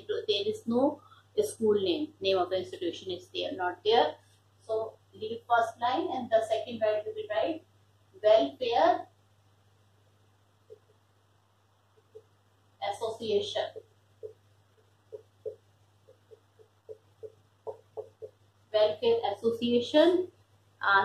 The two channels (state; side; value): identical; both; correlation 1.00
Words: is no school name of the institution is there, not there. So leave first line, and the second line will be write welfare association. Welfare association.